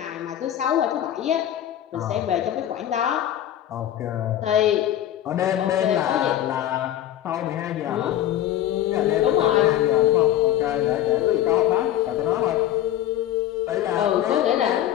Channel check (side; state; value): right; quieter; 11.9 dB